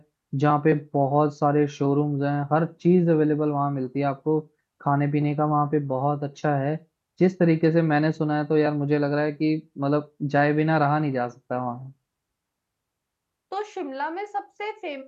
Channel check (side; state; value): both; identical; correlation 1.00